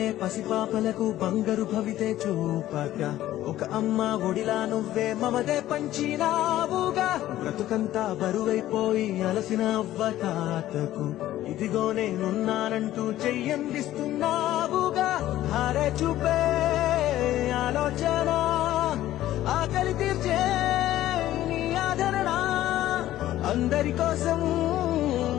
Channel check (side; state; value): right; quieter; 14.1 dB